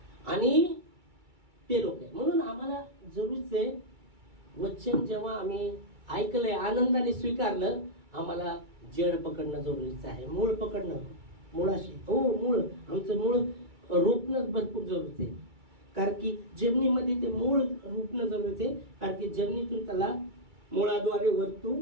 आणि ते लोक आहे म्हणून आम्हाला जरूरच आहे वचन जेव्हा आम्ही ऐकलंय आनंदाने स्वीकारलं, आम्हाला जड पकडणं जरुरीचं आहे, मूळ पकडणं. मुळाशी हो मूळ, आमचं मूळ रोपणं भरपूर जरुरीचं आहे. कारण की जमिनीमध्ये ते मूळ रोपणं जरुरीचं आहे, कारण की जमिनीतून त्याला मुळाद्वारे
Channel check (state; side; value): late; left; 2.3 ms